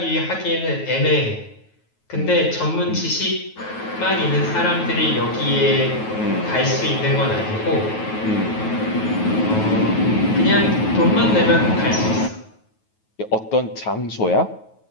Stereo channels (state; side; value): late; right; 9.3 ms